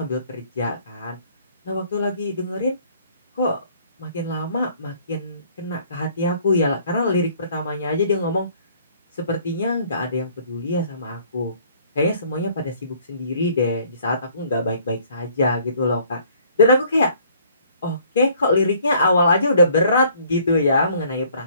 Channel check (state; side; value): inverted; both; correlation -0.58